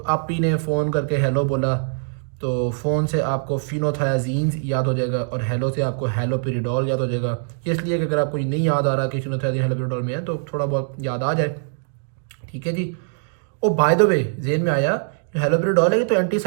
आप ही ने फ़ोन करके हेलो बोला तो फ़ोन से आपको फिनोथायाजीन्स याद हो जाएगा और हेलो से आपको हेलोपेरिडोल याद हो जाएगा। ये इसलिए कि अगर आपको ये नहीं याद आ रहा कि फिनोथायाजीन हेलोपेरिडोल में है तो थोड़ा बहुत याद आ जाए। ठीक है जी। ओ बाय द वे जेन में आया, हेलोपेरिडोल है ये तो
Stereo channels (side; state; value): left; silent; digital silence